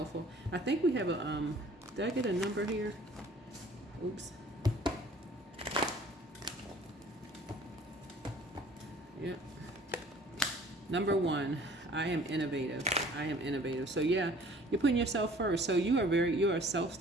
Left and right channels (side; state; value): both; normal; correlation 0.51